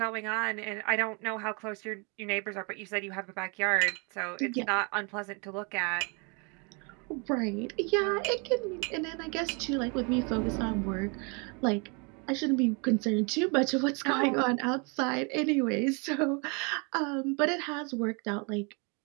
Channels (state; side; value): quieter; left; 33.4 dB